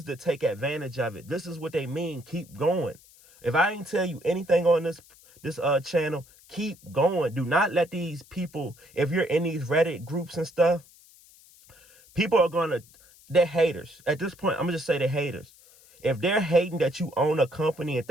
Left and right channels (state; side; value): noise; left; hiss, 26 dB below the sound